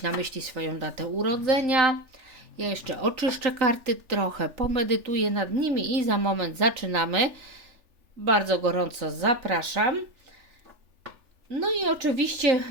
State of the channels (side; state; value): left; late; 3.4 ms